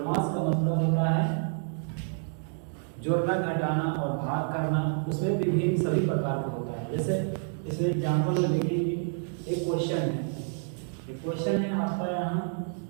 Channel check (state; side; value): silent; left; 59 dB below the other